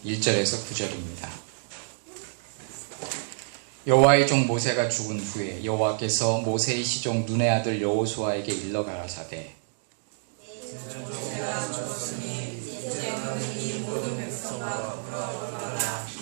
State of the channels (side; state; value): left; silent; digital silence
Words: 1절에서 9절입니다. 여호와의 종 모세가 죽은 후에 여호와께서 모세의 시종 눈의 아들 여호수아에게 일러 가라사대 모세가 죽었으니 이제 너는 이 모든 백성과 더불어 일어나